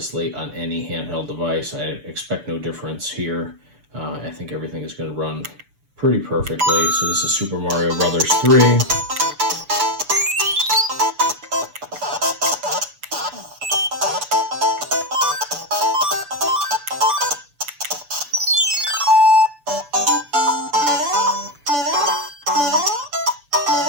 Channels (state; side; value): late; left; 6.9 ms